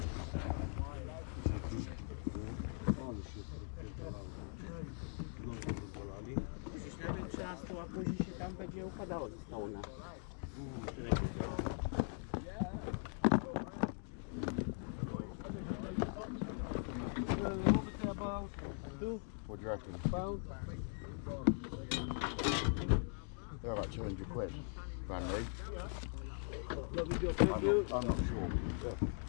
Ale się rozpierdalało. Znowu rozwalali. Przecież nawet 13, a później się tam będzie układało ze spawna. What we say about 2 What do you reckon? pounds? They're about 200 quid. Brand new. Lovely job, thank you. I'm not sure.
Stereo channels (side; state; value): right; silent; 50 dB below the other